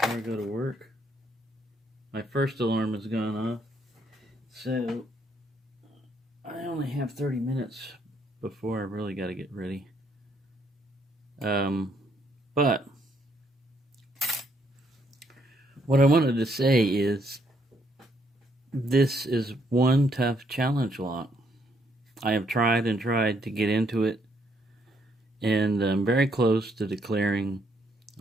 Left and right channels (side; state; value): both; normal; correlation 0.71